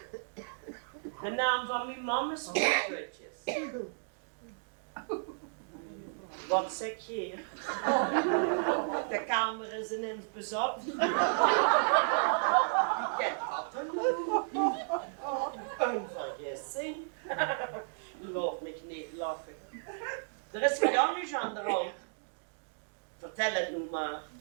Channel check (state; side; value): silent; left; digital silence